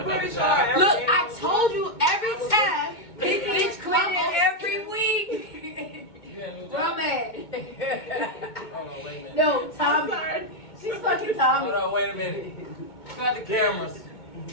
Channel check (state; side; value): late; right; 2.2 ms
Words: pretty sure. look, I told you every time. This bitch quitting every week. From it. Hold on, wait a minute. No, I'm Tommy. sorry. She's fucking Tommy. Hold on, wait a minute. Got the cameras.